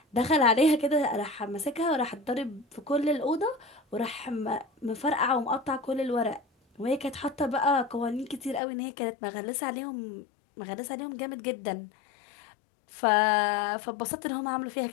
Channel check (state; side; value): drops out; right; at 8.6 s